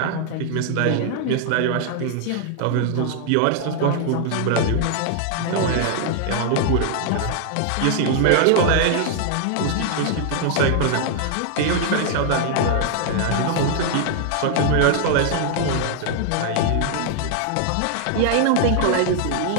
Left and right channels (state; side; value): different; both; correlation 0.00